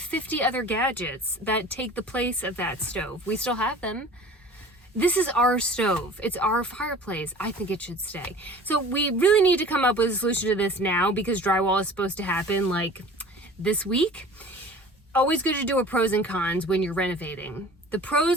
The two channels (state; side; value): normal; both; correlation 0.43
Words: other gadgets that take the place of that stove. We still have them. This is our stove. It's our fireplace. I think it should stay. So we really need to come up with a solution to this now because drywall is supposed to happen like this week. Always good to do a pros and cons when you're renovating. The